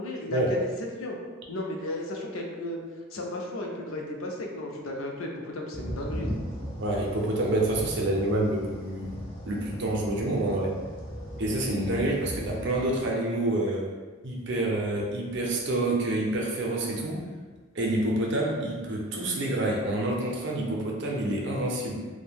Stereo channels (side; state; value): both; normal; correlation 0.37